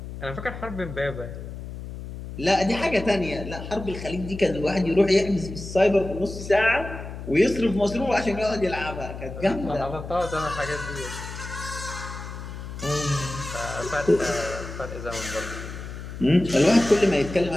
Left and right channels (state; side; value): noise; left; hum, 10 dB below the sound